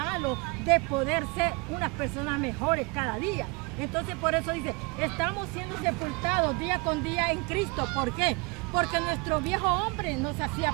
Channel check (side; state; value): left; quieter; 29.5 dB